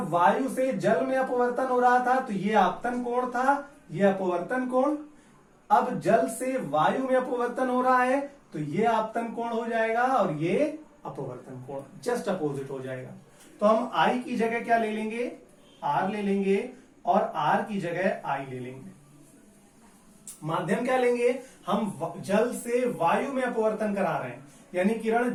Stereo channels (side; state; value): both; identical; correlation 1.00